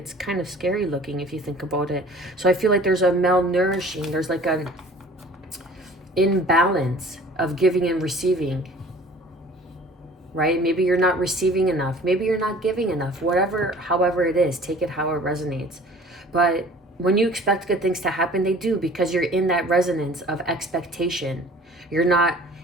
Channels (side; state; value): both; normal; correlation 0.48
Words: kind of scary looking if you think about it. So I feel like there's a malnourishing. There's like an imbalance of giving and receiving. Right? Maybe you're not receiving enough. Maybe you're not giving enough. However it is, take it how it resonates. But when you expect good things to happen, they do, because you're in that resonance of expectation. You're not